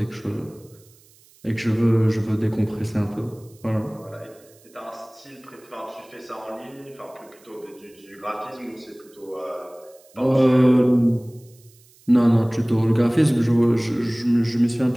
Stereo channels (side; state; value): right; noise; hiss, 28 dB below the sound